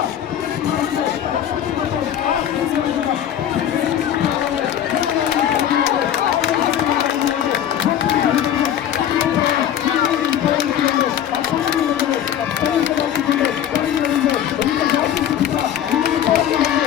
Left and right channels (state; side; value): quieter; right; 10.3 dB